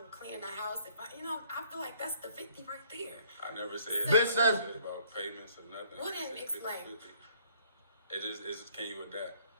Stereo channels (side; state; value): both; inverted; correlation -0.61